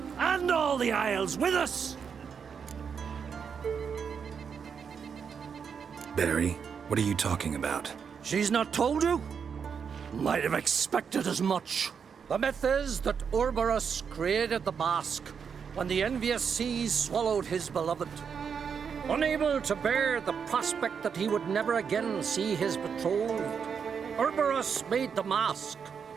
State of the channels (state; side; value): quieter; left; 6.6 dB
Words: and all the Isles with us. Barry, what are you talking about? She's not told you? Might have expected as much. The myth is that Orberus created the mask when the envious seas swallowed his beloved. Unable to bear the prospect that he would never again see his betrothed, Orberus made the mask,